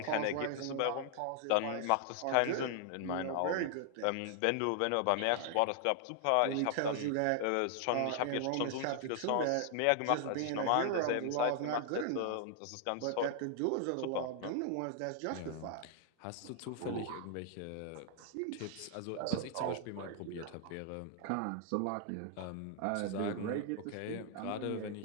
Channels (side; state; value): both; different; correlation -0.01